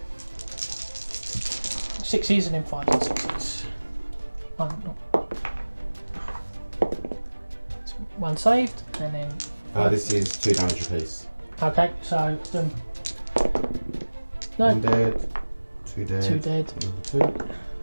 6s and then 5s and 6s. 1 saved, and then. This is 2 damage apiece. Okay, so. No. 1 dead, 2 dead. 2 dead. Another 2.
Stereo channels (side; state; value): both; inverted; correlation -1.00